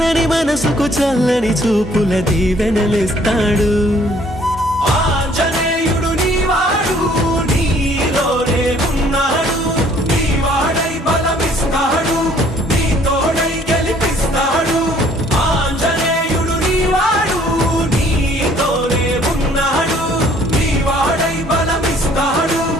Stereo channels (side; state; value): both; normal; correlation 0.59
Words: మనసుకు చల్లని చూపుల దీవెనలిస్తాడు